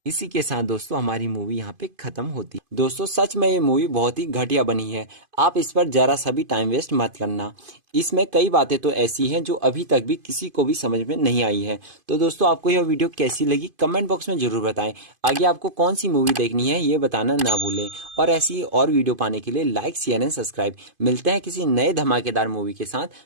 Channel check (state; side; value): late; left; 2.5 ms